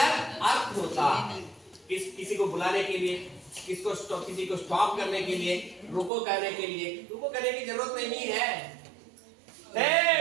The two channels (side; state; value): left; drops out; at 6.1 s